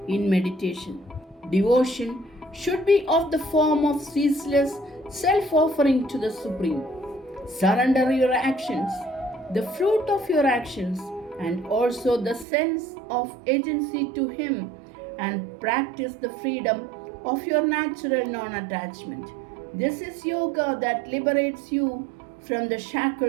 in meditation. Devotion should be of the form of ceaseless self-offering to the Supreme. Surrender your actions, the fruit of your actions, and also the sense of agency to Him, and practice the freedom of your natural non-attachment. This is yoga that liberates you from the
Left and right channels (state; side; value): drops out; left; at 12.5 s